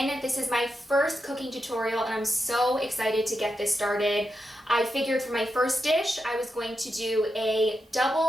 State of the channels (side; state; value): both; normal; correlation 0.87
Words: This is my first cooking tutorial and I'm so excited to get this started. I figured for my first dish I was going to do a